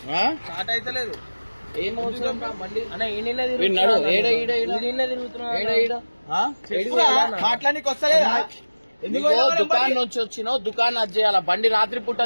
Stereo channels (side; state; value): both; inverted; correlation -1.00